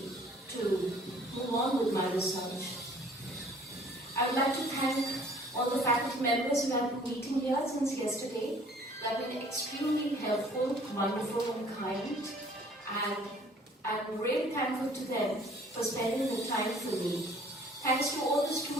to move on with my research. I would like to thank all the faculty members who have been meeting here since yesterday. They have been extremely helpful, wonderful and kind, and I'm really thankful to them for spending the time for me. Thanks to all the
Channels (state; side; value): normal; both; correlation 0.55